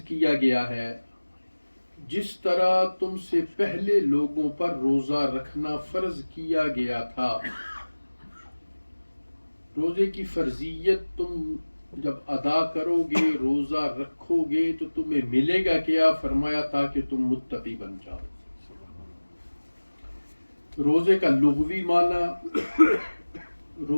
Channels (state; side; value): inverted; both; correlation -1.00